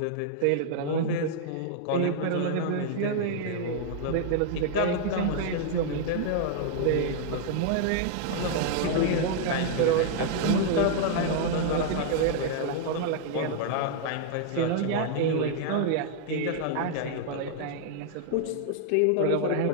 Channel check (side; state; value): both; different; correlation -0.01